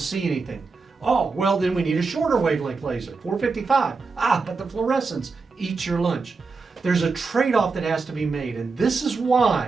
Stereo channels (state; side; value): quieter; left; 4.4 dB